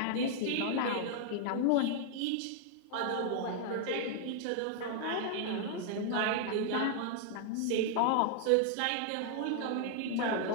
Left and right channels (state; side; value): different; both; correlation 0.00